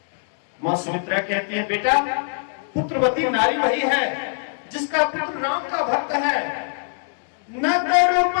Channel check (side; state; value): right; silent; 64 dB below the other